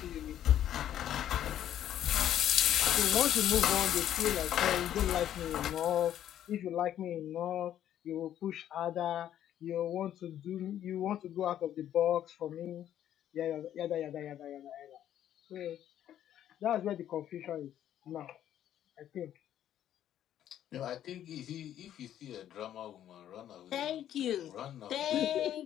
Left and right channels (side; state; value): right; quieter; 11.1 dB